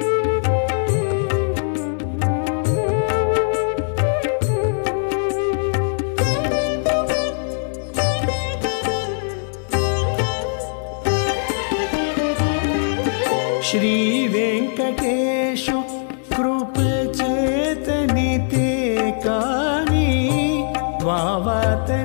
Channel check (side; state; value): right; silent; digital silence